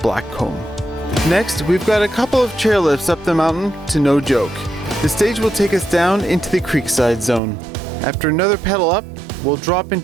Next, we've got a couple of chairlifts up the mountain to No Joke. The stage will take us down into the Creekside zone. After another pedal up, we'll drop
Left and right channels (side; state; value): left; drops out; at 7.4 s